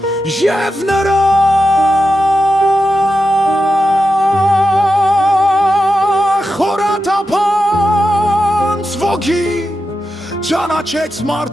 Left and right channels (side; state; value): both; normal; correlation 0.89